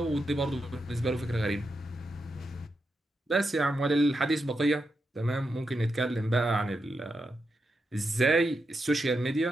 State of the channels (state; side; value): normal; both; correlation 0.86